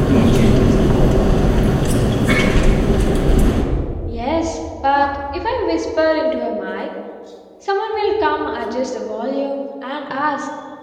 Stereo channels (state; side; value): identical; both; correlation 1.00